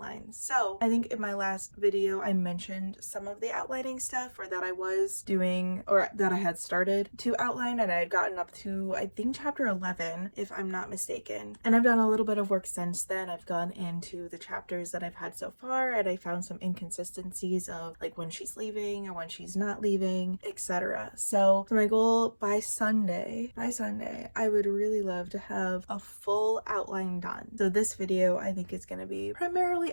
So I think in my last video I mentioned some of the outlining stuff, or that I was doing, or that I had started to outline, and I had gotten up to, I think, chapter 11, if I'm not mistaken. And I've done a little bit of work since then. I've gone into the chapters that I've had so far, and I found some inconsistencies of like when she's leaving or when she's not leaving, etc. So my goal by Sunday, I would really love to have a full outline done. So this video, I think, is going to be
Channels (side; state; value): both; inverted; correlation -1.00